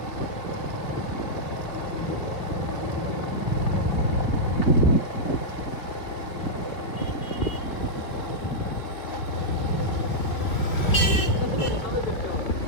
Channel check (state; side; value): late; right; 2.7 ms